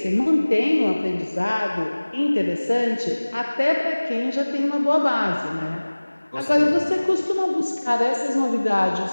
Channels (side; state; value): both; inverted; correlation -1.00